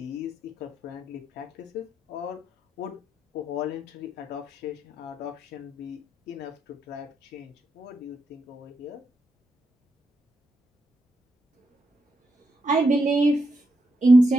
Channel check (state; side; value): normal; both; correlation 0.83